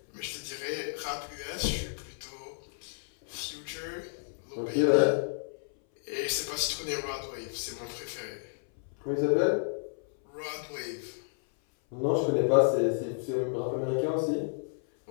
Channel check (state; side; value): silent; right; 57 dB below the other